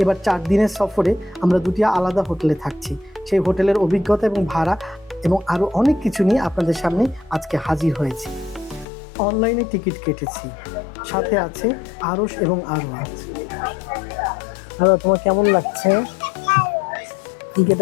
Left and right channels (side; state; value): right; drops out; at 8.8 s